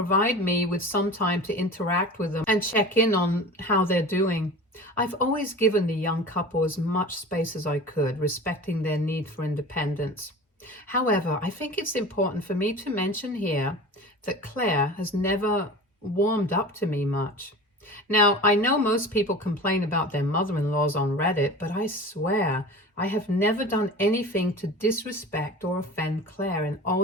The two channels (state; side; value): normal; both; correlation 0.36